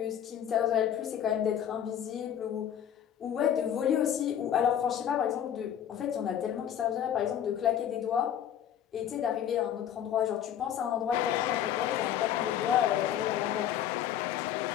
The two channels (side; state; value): right; quieter; 9.9 dB